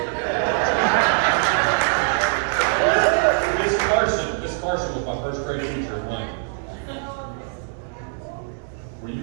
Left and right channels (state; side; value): silent; left; digital silence